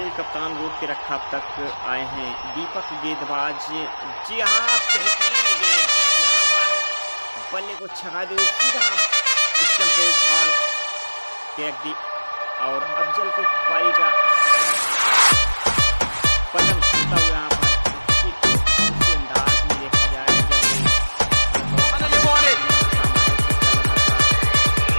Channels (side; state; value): both; inverted; correlation -1.00